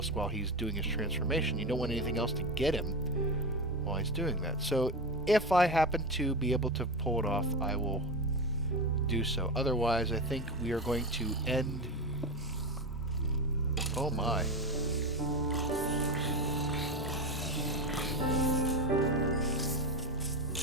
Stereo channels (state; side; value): normal; both; correlation 0.19